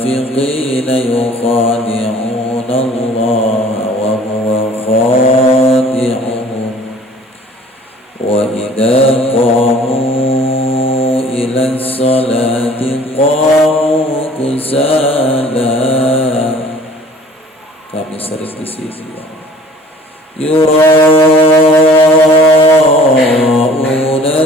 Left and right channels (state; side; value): normal; both; correlation 0.50